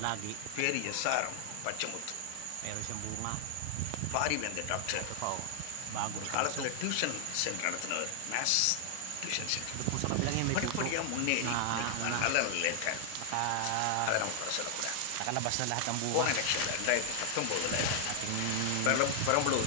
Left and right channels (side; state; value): both; different; correlation 0.00